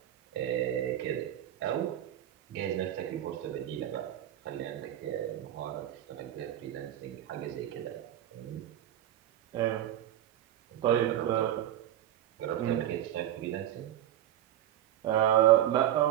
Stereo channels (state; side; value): quieter; left; 12.2 dB